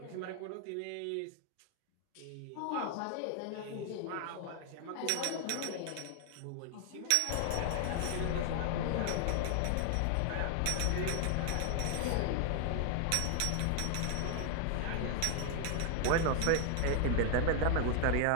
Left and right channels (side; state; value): both; different; correlation 0.00